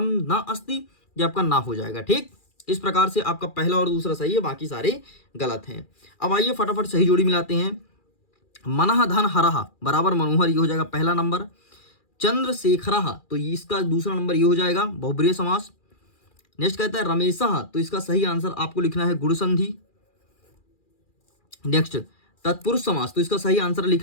न अस्ति। ये आपका ना हो जाएगा। ठीक, इस प्रकार से आपका पहला और दूसरा सही है, बाकी सारे गलत हैं। अब आइए फटाफट सही जोड़ी मिलाते हैं। मनः धन हरः बराबर मनोहर, ये हो जाएगा पहला नंबर। चंद्रशेखरः तो इसका दूसरा नंबर ये हो जाएगा बहुब्रीहि समास। नेक्स्ट कहता है रमेशः, तो इसका सही आंसर आपको लिखना है गुण संधि। नेक्स्ट तत्पुरुष समास, तो इसका सही आंसर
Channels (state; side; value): late; right; 2.4 ms